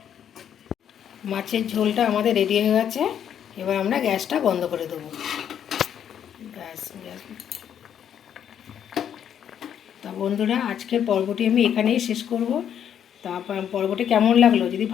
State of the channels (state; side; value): quieter; right; 9.1 dB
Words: মাছের ঝোলটা আমাদের রেডি হয়ে গেছে। এবার আমরা গ্যাসটা বন্ধ করে দেবো। গ্যাস তা বন্ধুরা, আজকের পর্বটি আমি এখানেই শেষ করব। তারপর পর্বটি কেমন লাগলো, যদি